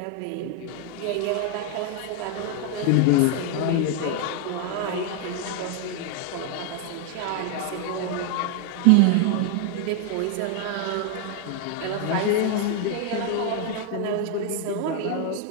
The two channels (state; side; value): different; both; correlation 0.00